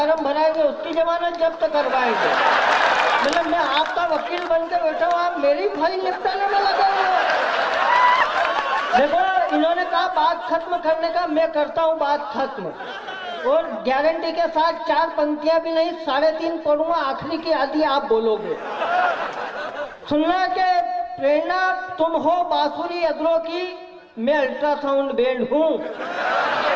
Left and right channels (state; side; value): identical; both; correlation 1.00